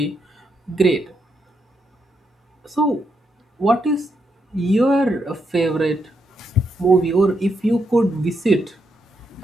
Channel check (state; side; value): normal; both; correlation 0.80